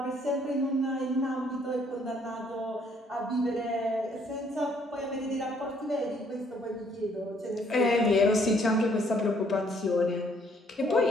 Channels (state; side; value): normal; both; correlation 0.65